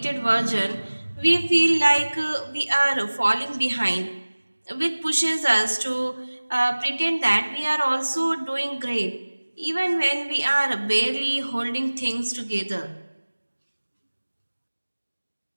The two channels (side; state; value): both; inverted; correlation -1.00